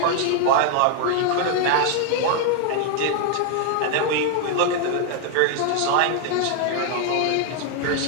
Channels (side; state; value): both; different; correlation 0.00